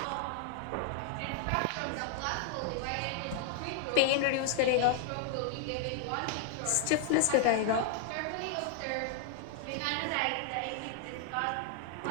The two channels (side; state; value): both; different; correlation 0.00